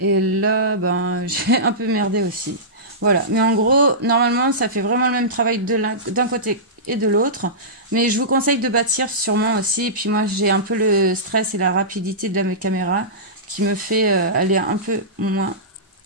Et là, ben, j'ai un peu merdé aussi. Voilà. Mais en gros, normalement, ça fait vraiment le même travail d'un côté et de l'autre. Mais je vous conseille de bâtir sûrement aussi. Et puis moi, j'ai un peu le stress et la rapidité de la caméra qui me fait aller un peu moins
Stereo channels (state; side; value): normal; both; correlation -0.18